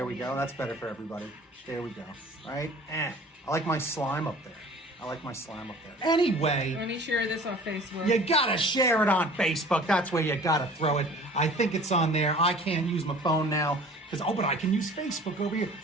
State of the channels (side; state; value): both; normal; correlation 0.46